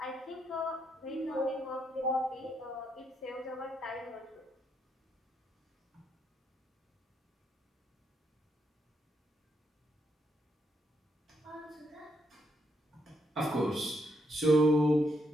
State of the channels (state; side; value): normal; both; correlation 0.77